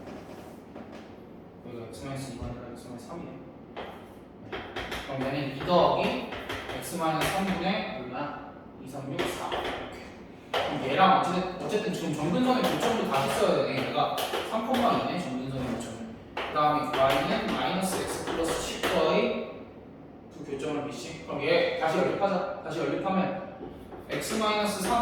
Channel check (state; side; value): identical; both; correlation 1.00